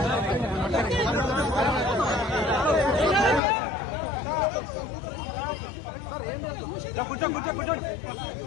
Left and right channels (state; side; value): drops out; right; at 3.4 s